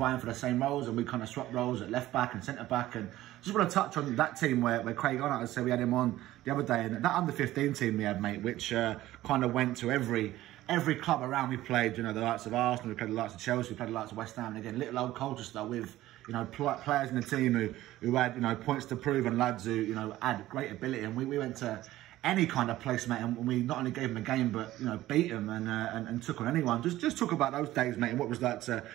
for the same roles, and we kind of swapped roles at left back and centre back. And just want to touch on that team where Craig Arnott, as I said, we had him on the other day, and that under-15 team we had, mate, which kind of went to every club around. We played, you know, the likes of Arsenal, we played the likes of Chelsea, we played the likes of West Ham, and again, little old Colchester with, you know, players in the team who had, you know, points to prove, and lads who, you know, had great ability. And we went to any kind of place, mate, and we not only gave them a game, but, you know, beat them and took on anyone. Just talk about those days, mate, and what was that to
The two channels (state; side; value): quieter; left; 15.4 dB